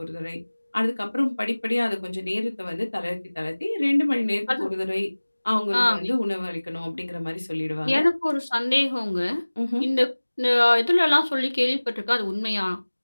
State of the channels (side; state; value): both; inverted; correlation -1.00